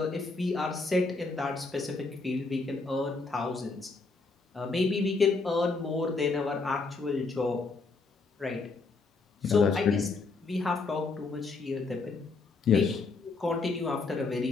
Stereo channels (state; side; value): quieter; right; 4.0 dB